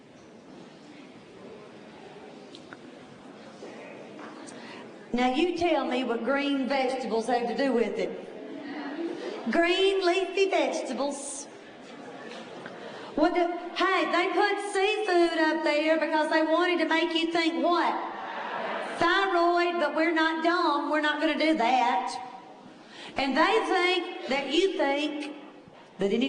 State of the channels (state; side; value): identical; both; correlation 1.00